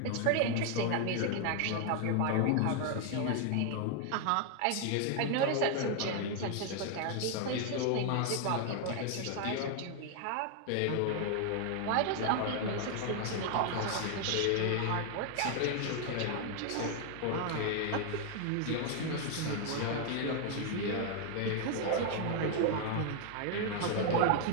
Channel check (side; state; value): both; different; correlation 0.00